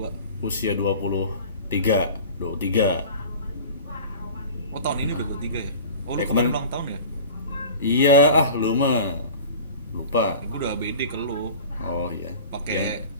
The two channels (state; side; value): inverted; both; correlation -0.40